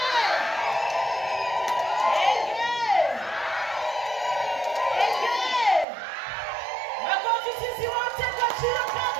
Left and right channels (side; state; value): left; drops out; at 5.9 s